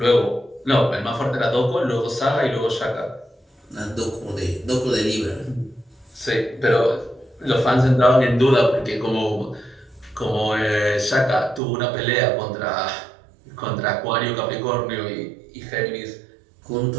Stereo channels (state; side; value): drops out; left; at 11.6 s